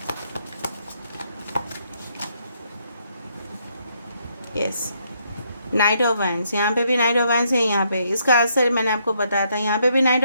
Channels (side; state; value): both; inverted; correlation -0.74